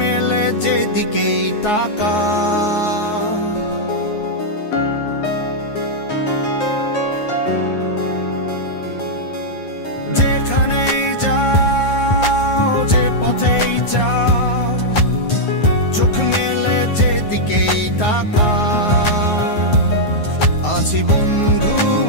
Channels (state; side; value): late; right; 9.5 ms